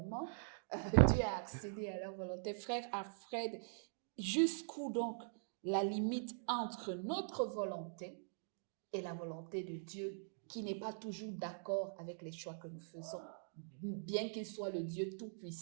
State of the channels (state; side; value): silent; left; digital silence